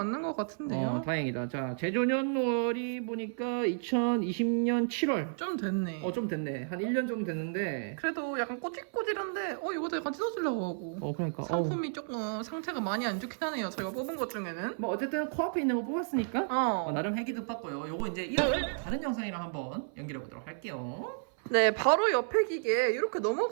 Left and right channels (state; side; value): silent; left; 56 dB below the other